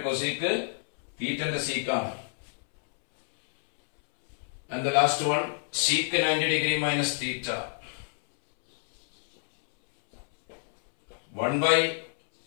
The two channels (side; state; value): right; silent; 60 dB below the other